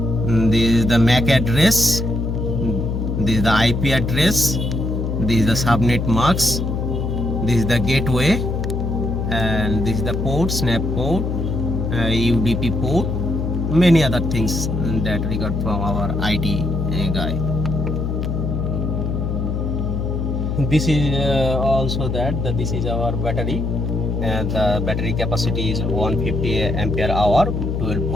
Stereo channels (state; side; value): noise; left; hum, 1 dB below the sound